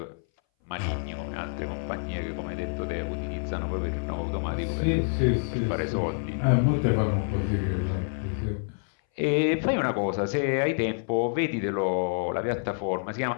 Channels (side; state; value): right; silent; 58 dB below the other